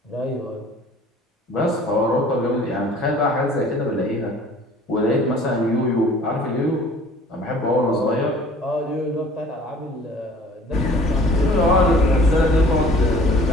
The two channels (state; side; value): normal; both; correlation 0.50